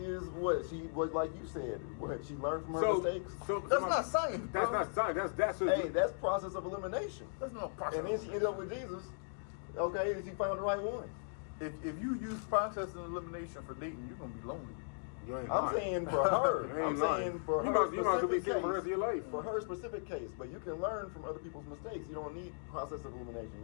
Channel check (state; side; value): silent; right; digital silence